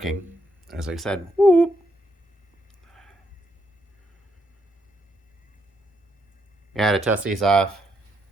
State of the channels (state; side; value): normal; both; correlation 0.77